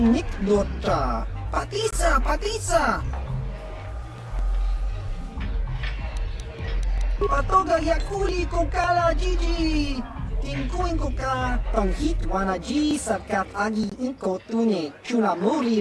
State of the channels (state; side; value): identical; both; correlation 1.00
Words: nik dota, patisa, patisa. Patoga yakuli kokala Gigi. Tingkuin koka, tong hitwana ji satkat agi inko tune, chuna